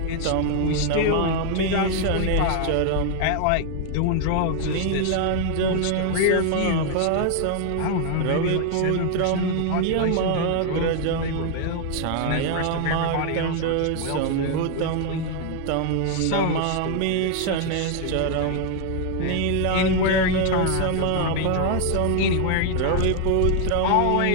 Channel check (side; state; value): both; different; correlation 0.00